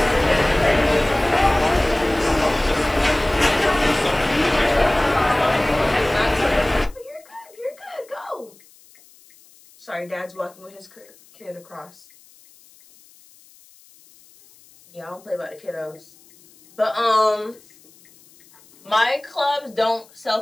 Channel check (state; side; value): noise; left; hiss, 27 dB below the sound